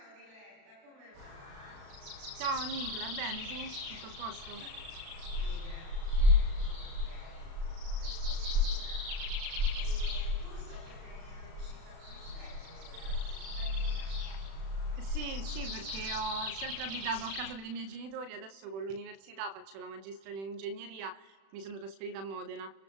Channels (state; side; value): late; left; 36 ms